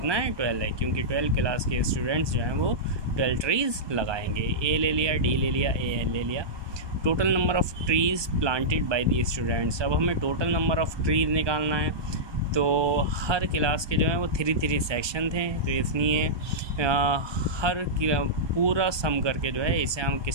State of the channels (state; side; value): late; left; 1.2 ms